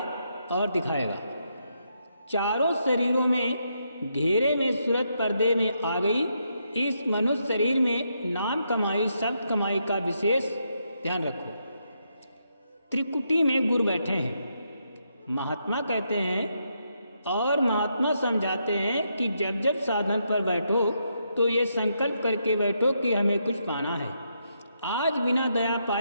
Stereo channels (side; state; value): both; inverted; correlation -0.79